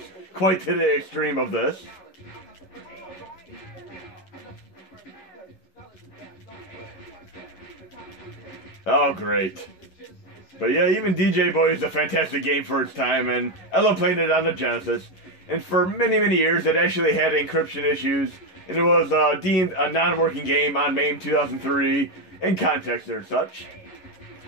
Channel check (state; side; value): late; right; 11 ms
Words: quite to the extreme of this. Oh, great. But yeah, even DJ Boy is a fantastic game for its time, and I love playing it on the Genesis. And for many, many years, it actually had encryption issues, and it was deemed a non-working game on MAME 2003 in context or such.